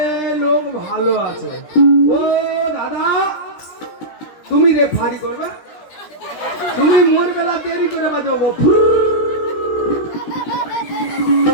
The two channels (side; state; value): right; late; 17 ms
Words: লোক ভালো আছে। ও দাদা, তুমি রেফারি করবে? তুমি মোর বেলা দেরি করে বাজাবো।